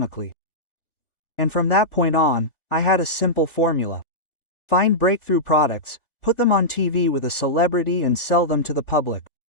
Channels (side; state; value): right; late; 1.4 ms